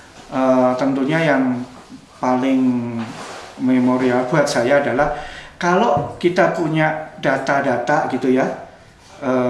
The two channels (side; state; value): both; identical; correlation 1.00